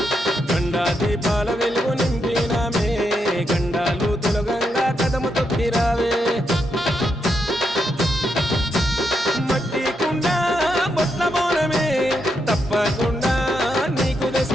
గండా దీపాల వెలుగు నింపినామే గండాలు తొలగంగా కదము తొక్కి రావే మట్టి కుండ బొట్ల బోనమే తప్పకుండా నీకు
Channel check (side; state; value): both; normal; correlation 0.82